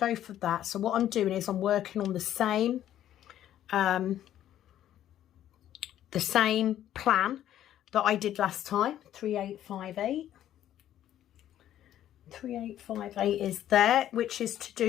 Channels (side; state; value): right; quieter; 11.7 dB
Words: for that. So what I'm doing is I'm working on the same plan that I did last time. 3858. 3858 is there, which is to